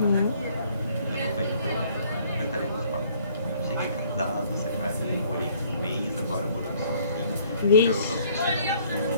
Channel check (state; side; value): inverted; both; correlation -0.60